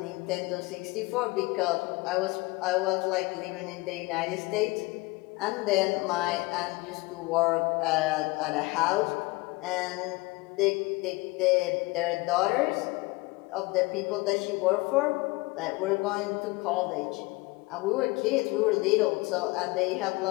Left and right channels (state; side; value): quieter; right; 23.3 dB